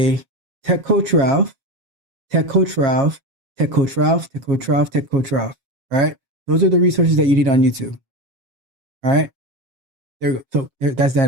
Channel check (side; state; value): left; late; 7.4 ms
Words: Tech Coach Ralph, Tech Coach Ralph, Tech Coach Ralph, Tech Coach Ralph, Tech Coach Ralph, right? Those are the resources that you need on YouTube. All right, there you go. So that's